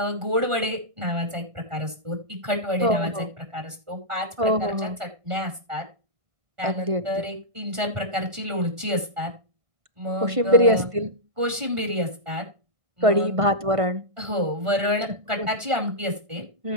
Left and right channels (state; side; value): late; left; 1.5 ms